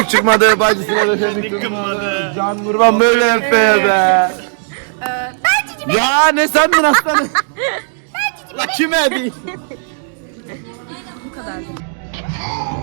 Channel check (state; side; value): silent; left; digital silence